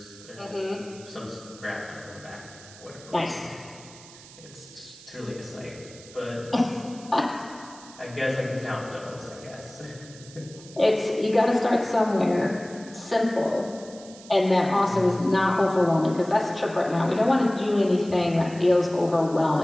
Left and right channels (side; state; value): right; noise; hiss, 20 dB below the sound